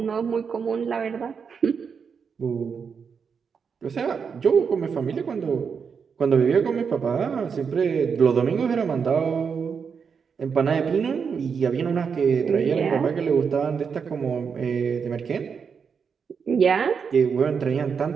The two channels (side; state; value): left; quieter; 6.2 dB